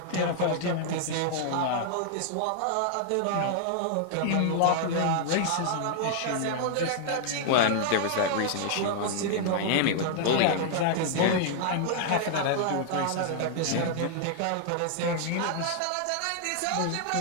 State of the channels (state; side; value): different; both; correlation -0.01